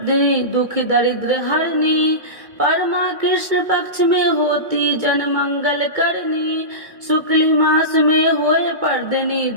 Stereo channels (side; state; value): left; late; 2.2 ms